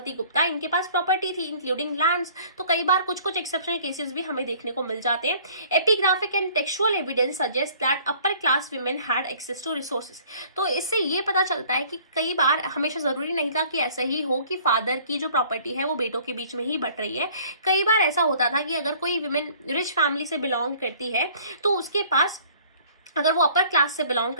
गुप्ता, इनके पास प्रॉपर्टी थी इंक्लूडिंग लैंड्स। तो कई बार कुछ कुछ एक्सेप्शनल केसेस भी हमें देखने को मिल जाते हैं। Epigraphic and textual evidence suggest that upper class women had access to resources. तो इससे ये पता चलता है कि कई बार हमेशा जरूरी नहीं था कि ऐसा ही हो कि फादर की जो प्रॉपर्टी है वो बेटों के बीच में ही बट रही है। कई बार ऐसा होता था कि अगर कोई वुमेन रिच फैमिली से बिलोंग करती है तो उसके पास, अगर वो अपर क्लास से बिलोंग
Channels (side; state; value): both; inverted; correlation -0.54